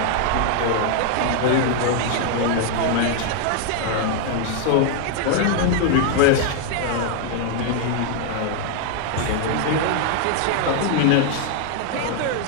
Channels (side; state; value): both; different; correlation 0.00